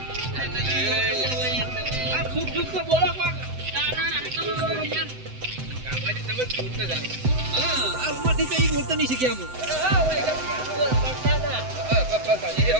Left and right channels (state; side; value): late; left; 7.9 ms